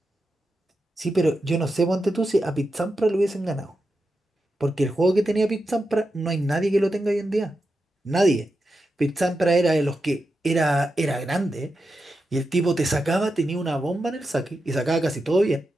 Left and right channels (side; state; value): both; normal; correlation 0.89